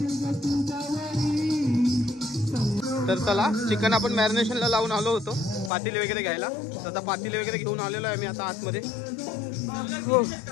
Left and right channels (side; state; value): right; drops out; at 5.7 s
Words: तर चला चिकन आपण मॅरिनेशनला लावून आलो होतो पातेले वगैरे घ्यायला. तर आता पातेले वगैरे घेऊन आलेलो आहे मी आता आतमध्ये.